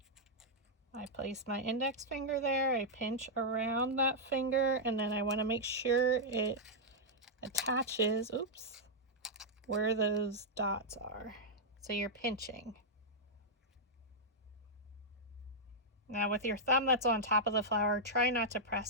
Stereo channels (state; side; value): normal; both; correlation -0.07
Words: I place my index finger there, I pinch around that finger, and then I want to make sure it attaches, oops, where those dots are. So you're pinching. Now with your thumb that's on top of the flower, try not to